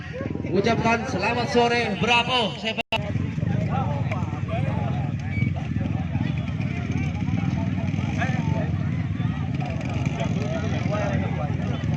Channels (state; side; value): identical; both; correlation 1.00